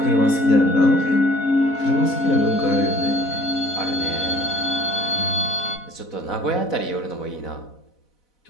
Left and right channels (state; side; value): late; right; 4.1 ms